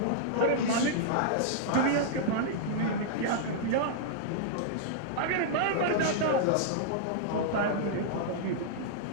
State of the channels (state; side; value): different; both; correlation -0.02